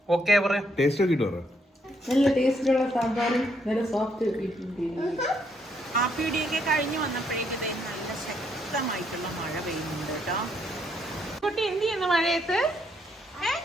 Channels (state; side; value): normal; both; correlation 0.73